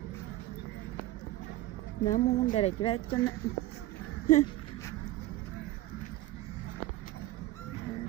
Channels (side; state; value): left; quieter; 16.3 dB